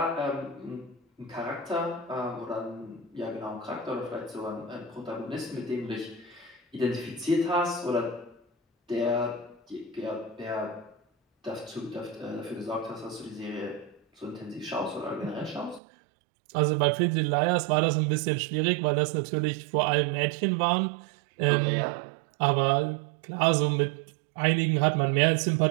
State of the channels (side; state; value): left; drops out; at 15.8 s